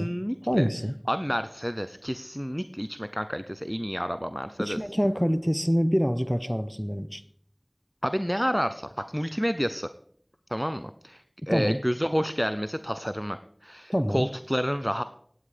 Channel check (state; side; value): identical; both; correlation 1.00